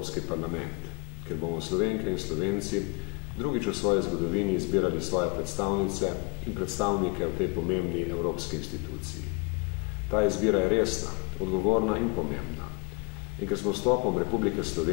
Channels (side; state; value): right; quieter; 28.5 dB